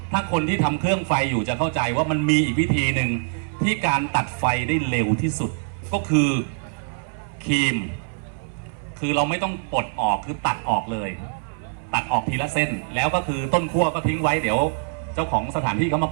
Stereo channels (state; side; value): silent; left; 59 dB below the other